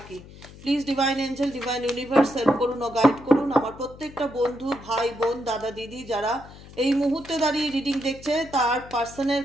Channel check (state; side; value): noise; left; hum, 18 dB below the sound